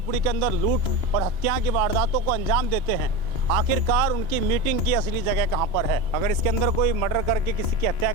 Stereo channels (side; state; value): left; late; 3.0 ms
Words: के अंदर लूट और हत्या की वारदातों को अंजाम देते हैं, आखिरकार उनकी मीटिंग की असली जगह कहां पर है। अगर इसके अंदर कोई मर्डर करके किसी की हत्या